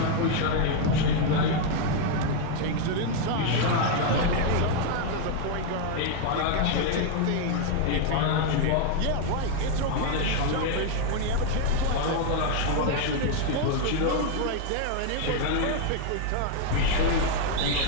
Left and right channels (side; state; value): both; different; correlation 0.00